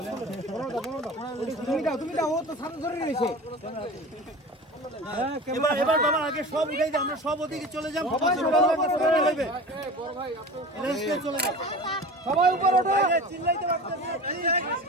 তুমি দাও, ও তো সামনে ধরে রয়েছে। এবার বাবা আগে সব উঠাই দাও, আমরা সব ওদিকে চলে যাই। সবাই উপরে ওঠো, চিল্লাইতে পারতেছি,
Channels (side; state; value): both; normal; correlation 0.35